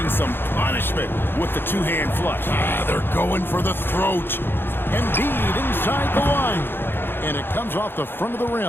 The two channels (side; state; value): right; late; 0.10 ms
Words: some punishment with the two-hand flush. They're going for the throat. Embiid inside the line. And it comes off the front of the